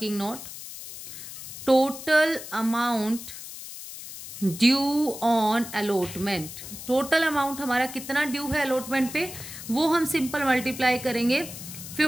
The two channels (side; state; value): left; noise; hiss, 12 dB below the sound